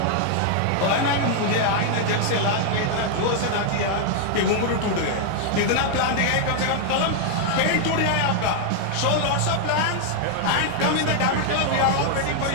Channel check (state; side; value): different; both; correlation 0.00